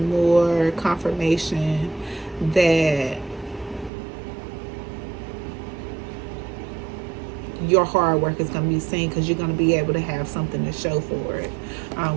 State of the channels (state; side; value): drops out; left; at 3.9 s